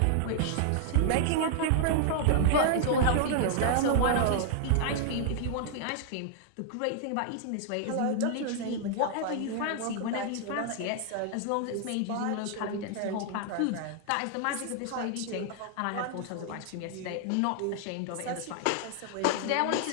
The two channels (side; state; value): both; different; correlation -0.01